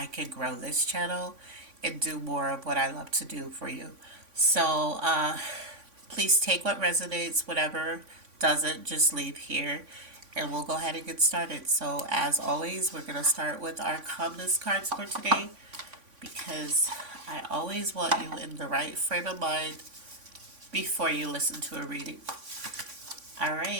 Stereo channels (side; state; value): left; late; 3.5 ms